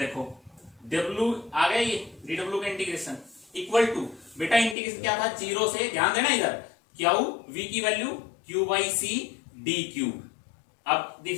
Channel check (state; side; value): drops out; right; at 4.8 s